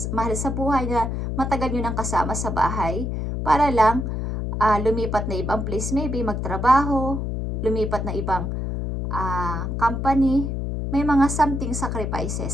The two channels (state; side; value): noise; left; hum, 2 dB below the sound